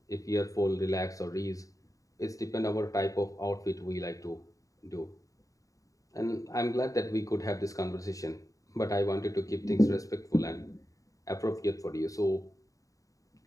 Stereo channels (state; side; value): late; right; 0.16 ms